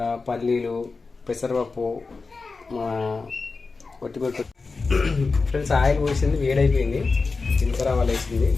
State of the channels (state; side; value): quieter; right; 4.2 dB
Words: పల్లీలు, పెసరపప్పు, వట్టిమిరపకాయ. ఫ్రెండ్స్, ఆయిల్ పోసింది, వేడైపోయింది. జీలకర్ర ఆవాలు వేసింది,